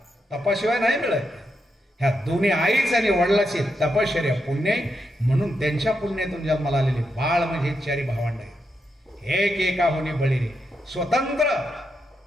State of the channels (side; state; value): both; normal; correlation 0.83